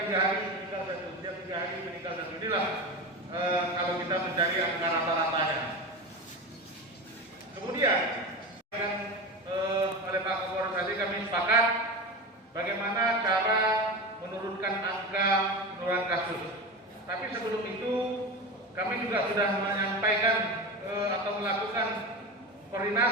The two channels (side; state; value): both; normal; correlation 0.24